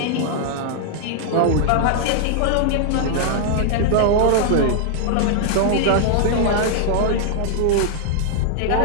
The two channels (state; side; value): different; both; correlation -0.01